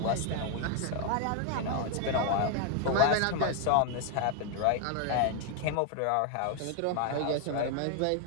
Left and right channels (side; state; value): both; different; correlation 0.00